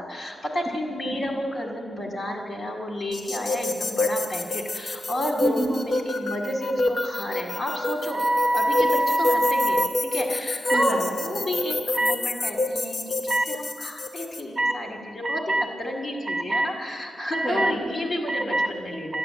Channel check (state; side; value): normal; both; correlation 0.90